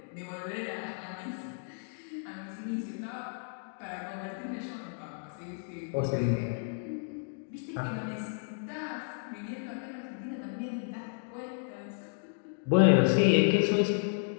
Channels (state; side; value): silent; right; digital silence